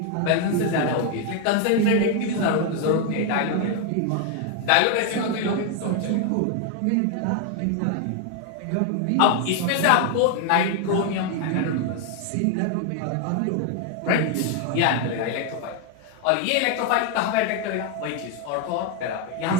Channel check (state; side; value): different; both; correlation 0.01